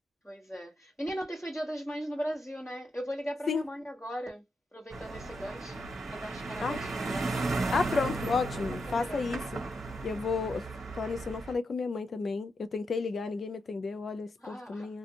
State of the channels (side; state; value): both; normal; correlation 0.84